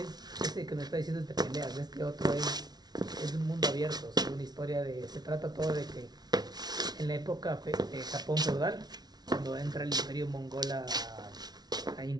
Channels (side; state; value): left; late; 0.19 ms